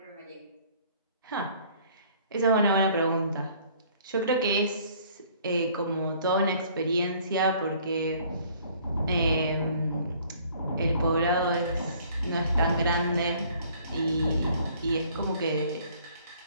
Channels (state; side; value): inverted; both; correlation -0.57